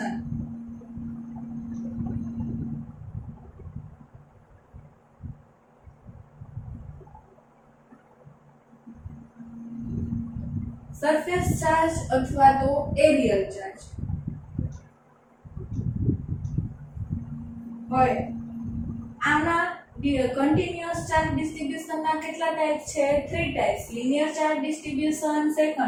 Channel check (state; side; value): identical; both; correlation 1.00